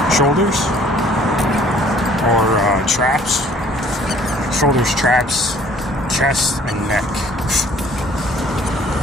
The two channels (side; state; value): both; normal; correlation 0.56